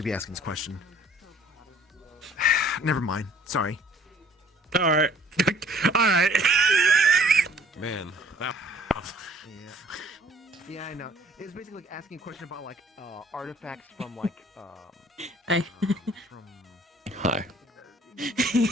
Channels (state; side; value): normal; both; correlation 0.56